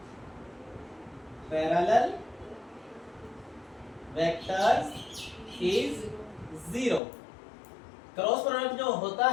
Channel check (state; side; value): drops out; right; at 7.0 s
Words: parallel vectors is 0। Cross product जो होता